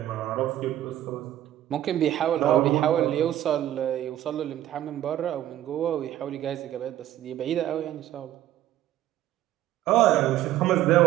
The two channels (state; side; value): quieter; left; 12.9 dB